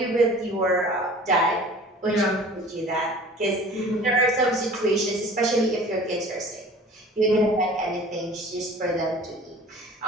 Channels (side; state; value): both; normal; correlation 0.45